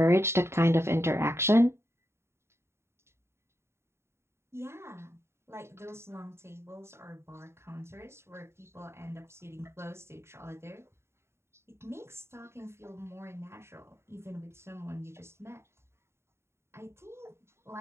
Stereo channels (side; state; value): left; late; 0.13 ms